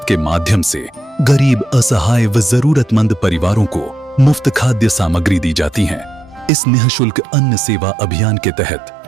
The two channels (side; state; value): left; drops out; at 6.5 s